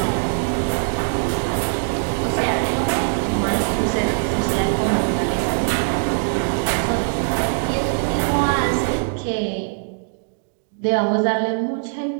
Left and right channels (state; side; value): silent; left; digital silence